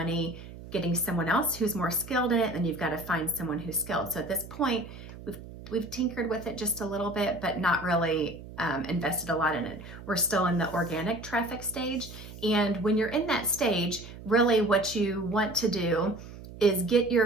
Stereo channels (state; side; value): noise; right; hum, 14 dB below the sound